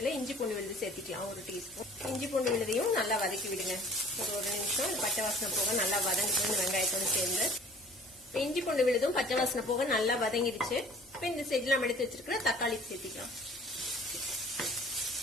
இஞ்சி பூண்டு விழுது சேர்த்திக்கலாம். 1 டீஸ்பூன் இஞ்சி பூண்டு விழுதையும் நல்லா வதக்கி விடுங்க. ஒரு நிமிஷம் பச்சை வாசனை போக நல்லா வதங்கிட்டு இந்த வெங்காயத்தோடு சேர்ந்து. இஞ்சி பூண்டு விழுதும் பச்சை வாசனை போக நல்லா வதங்கிடுச்சு. இப்ப இந்த ஸ்டேஜ்ல நம்ம எடுத்து வச்சிருக்கிற தக்காளி சேர்த்திக்கலாம்.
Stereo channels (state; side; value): noise; left; hum, 29 dB below the sound